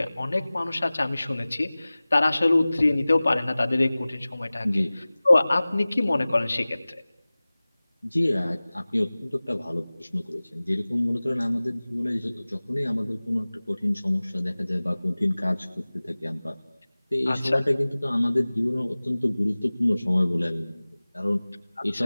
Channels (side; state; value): both; inverted; correlation -0.99